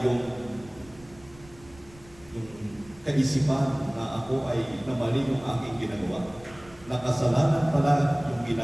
yung kaisipan na ako ay namali yung aking ginagawa. Nakasalanan pala yung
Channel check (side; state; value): right; noise; rumble, 23 dB below the sound